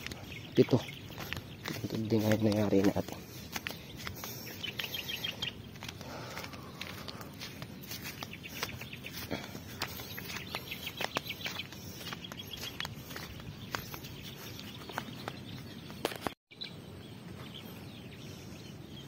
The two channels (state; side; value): identical; both; correlation 1.00